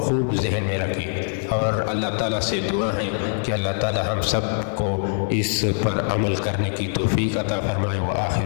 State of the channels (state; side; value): silent; right; 62 dB below the other